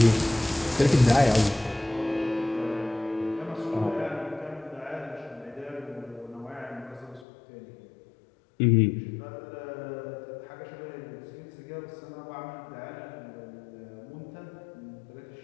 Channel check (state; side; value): drops out; right; at 7.2 s